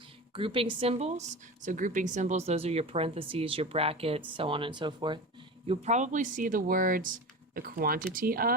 Grouping symbols. So grouping symbols, those are your parentheses, your brackets, so on and so forth. You'll probably see the words the quantity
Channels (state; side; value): normal; both; correlation 0.29